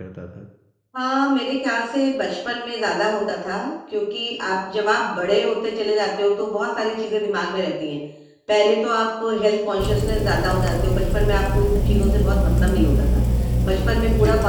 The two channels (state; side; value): identical; both; correlation 1.00